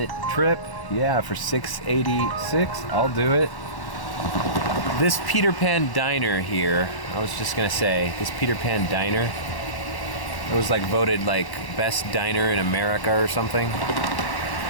trip. Yeah, for $6.86. I'll do it. This Peter Pan Diner here, I was just gonna say, this Peter Pan Diner, it was like voted like best diner in America or something.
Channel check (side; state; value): right; late; 1.0 ms